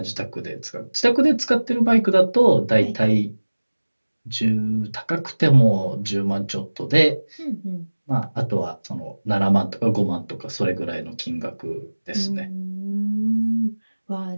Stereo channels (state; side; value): inverted; both; correlation -1.00